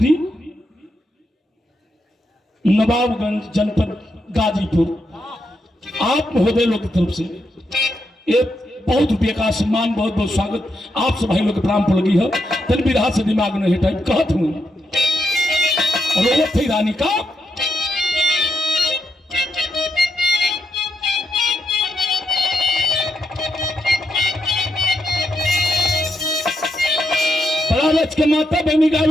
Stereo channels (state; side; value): normal; both; correlation 0.80